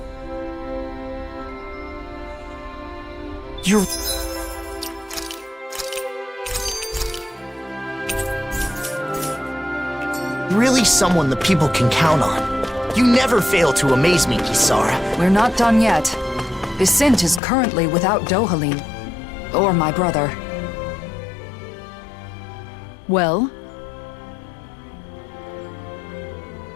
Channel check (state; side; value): drops out; right; at 17.4 s